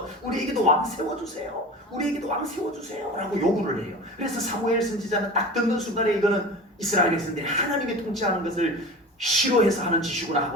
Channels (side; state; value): both; normal; correlation 0.34